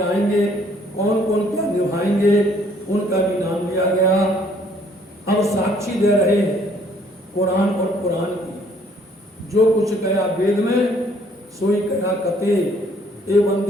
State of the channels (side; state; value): both; normal; correlation 0.62